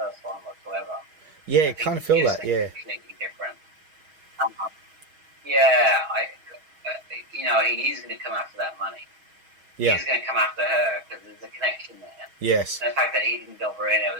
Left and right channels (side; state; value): left; late; 6.3 ms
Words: one whatsoever. Yeah, I kind of feel that. Yeah. Completely different. He's going to come after that money. Yeah. He's going to come after her because there's a connection there. Yes. And the fact that he didn't go for it, it